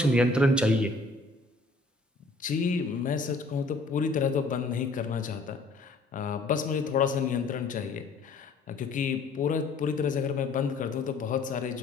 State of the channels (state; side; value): quieter; right; 3.4 dB